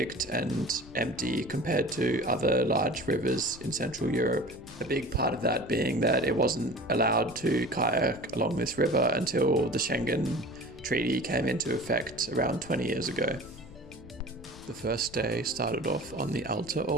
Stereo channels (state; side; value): noise; left; rumble, 19 dB below the sound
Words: and empty compared to other large rivers in Central Europe. A big part of that being that it wasn't allowed to kayak along this river until the Schengen Treaty came into effect around 20 years ago. The first day started off on the Alta